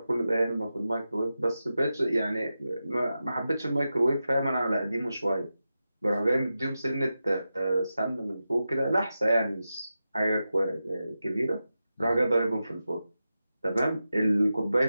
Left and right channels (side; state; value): both; inverted; correlation -0.91